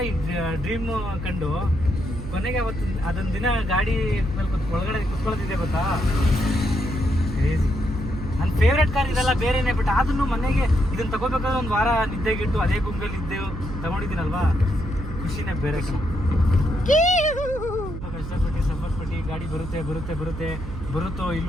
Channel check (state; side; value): noise; right; hum, 9 dB below the sound